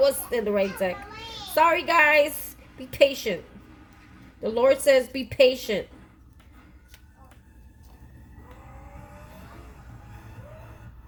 in the right deck. Sorry, guys. Be patient. The Lord says be patient.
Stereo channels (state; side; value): identical; both; correlation 1.00